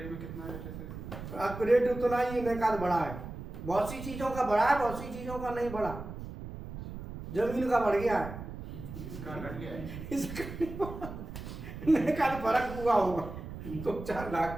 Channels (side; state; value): right; noise; rumble, 10 dB below the sound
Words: में कितना रेट है? अब रेट उतना ही इनका बढ़ा है, बहुत सी चीजों का बढ़ा है, बहुत सी चीजों का नहीं बढ़ा। जमीन का बढ़ गया है, इसका घट गया है। इसका फर्क हुआ होगा 2-4